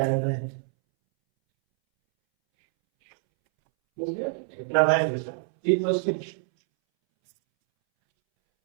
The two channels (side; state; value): left; silent; 61 dB below the other